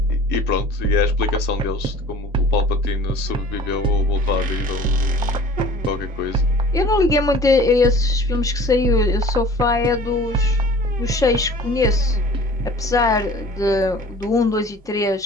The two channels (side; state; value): both; normal; correlation 0.46